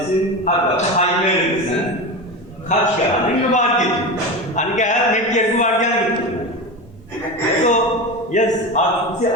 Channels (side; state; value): both; normal; correlation 0.23